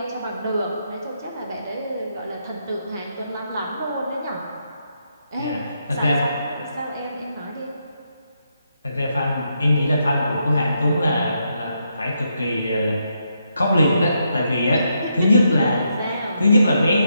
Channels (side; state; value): both; inverted; correlation -0.80